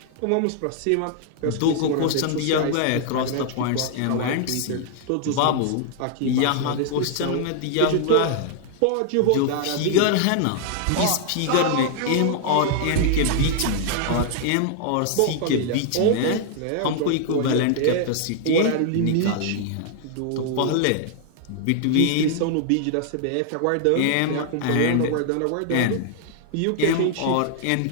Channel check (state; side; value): different; both; correlation 0.00